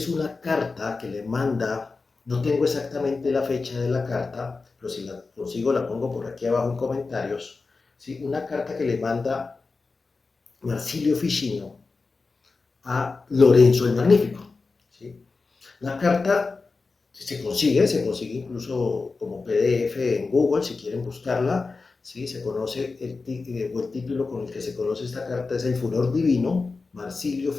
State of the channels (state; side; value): quieter; right; 4.1 dB